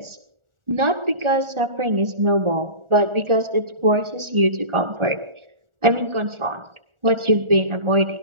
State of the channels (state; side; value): late; left; 1.4 ms